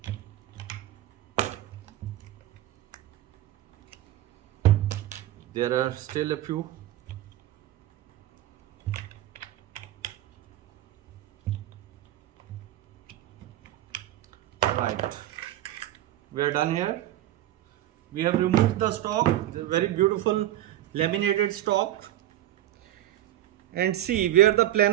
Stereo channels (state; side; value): quieter; left; 13.6 dB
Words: There are still a few. Right, we are done here. We have removed the stock, the very beautiful laminated stock, and see where the